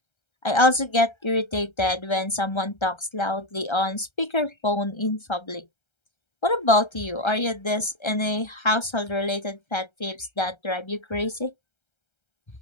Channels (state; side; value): late; right; 1.3 ms